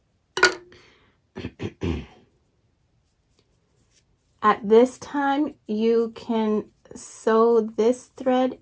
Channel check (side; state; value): both; identical; correlation 1.00